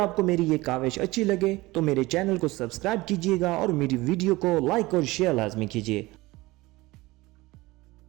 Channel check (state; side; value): quieter; left; 20.3 dB